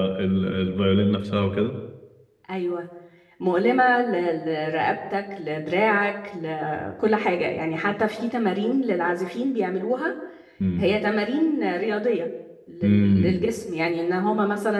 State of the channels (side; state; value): both; identical; correlation 1.00